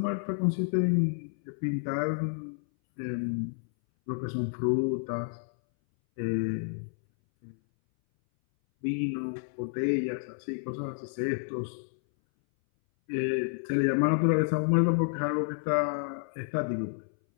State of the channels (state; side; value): silent; right; 58 dB below the other